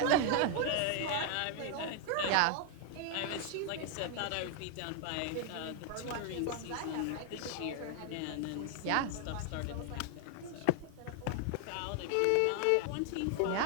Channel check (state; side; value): different; both; correlation 0.00